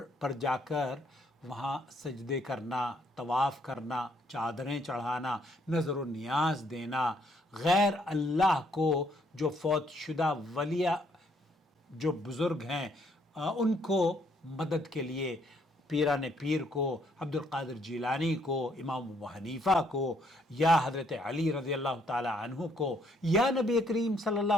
پر جا کر وہاں سجدے کرنا، طواف کرنا، چادریں چڑھانا، نظر و نیاز دینا، غیر اللہ کو جو فوت شدہ ولیہ جو بزرگ ہیں ان کو مدد کے لیے، پیران پیر کو، عبد القادر جیلانی کو، امام ابو حنیفہ کو، یا حضرت علی رضی اللہ تعالی عنہ کو، یا نبی کریم صلی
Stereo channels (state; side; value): normal; both; correlation 0.69